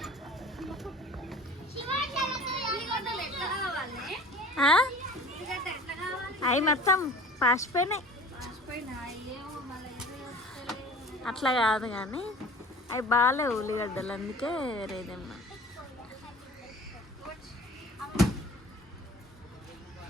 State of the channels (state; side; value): normal; both; correlation 0.44